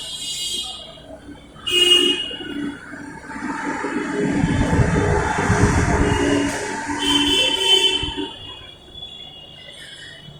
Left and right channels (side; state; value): both; identical; correlation 1.00